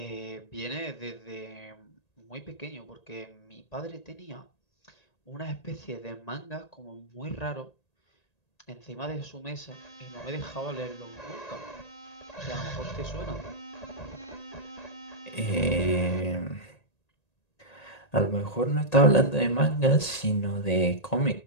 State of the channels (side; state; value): right; late; 1.9 ms